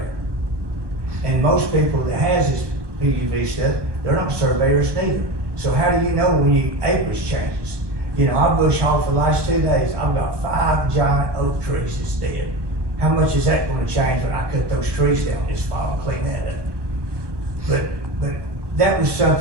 And most people that has this PUV stuff, they're not surveyors neither. So how do you know when your acreage changes? You know, I bush hogged for the last 2 days. I've got 5 giant oak trees that's dead. How much is that gonna change when I cut those trees down this fall and clean that up? But that was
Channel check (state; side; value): late; left; 1.2 ms